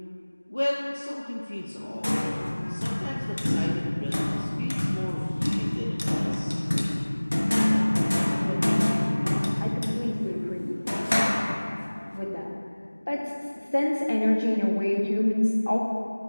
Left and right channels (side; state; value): both; inverted; correlation -1.00